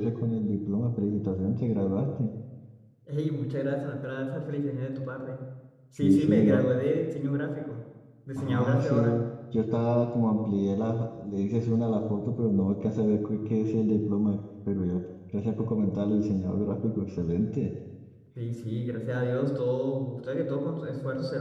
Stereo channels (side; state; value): both; identical; correlation 1.00